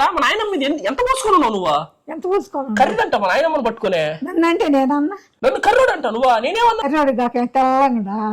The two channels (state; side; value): identical; both; correlation 1.00